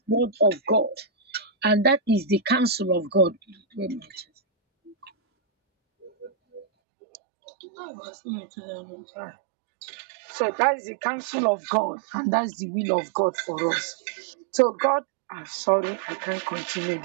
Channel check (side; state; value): left; drops out; at 6.7 s